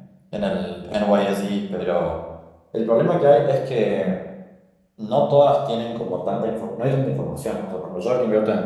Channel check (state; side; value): identical; both; correlation 1.00